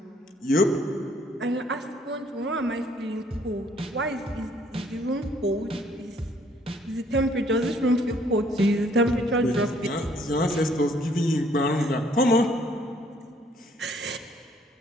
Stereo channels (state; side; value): normal; both; correlation 0.64